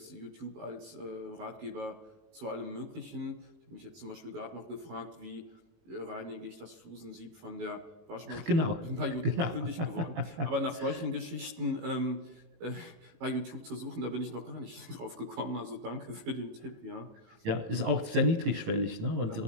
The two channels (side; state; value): left; late; 18 ms